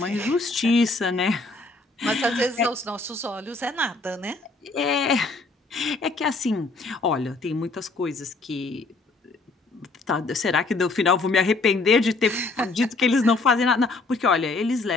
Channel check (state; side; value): quieter; right; 3.5 dB